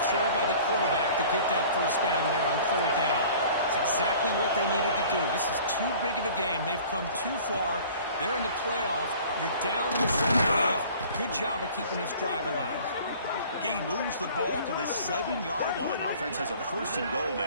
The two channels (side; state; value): both; inverted; correlation -0.48